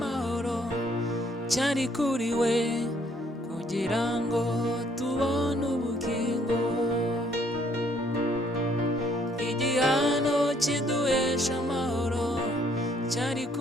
cyari kuri we, kugira ngo tubone ubugingo. Igihano kiduhesha amahoro cyari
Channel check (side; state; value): both; normal; correlation 0.65